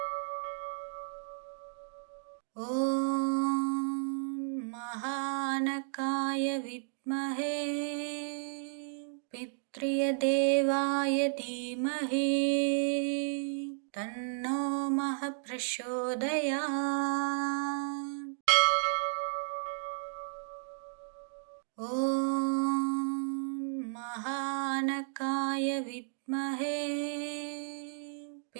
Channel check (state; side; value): silent; left; digital silence